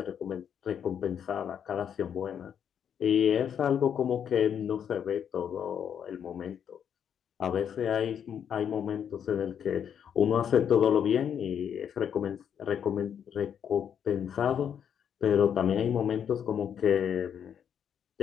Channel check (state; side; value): quieter; right; 8.4 dB